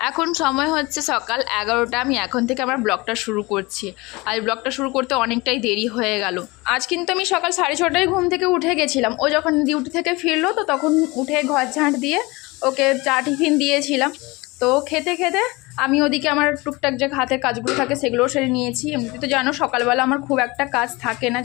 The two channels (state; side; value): quieter; right; 23.6 dB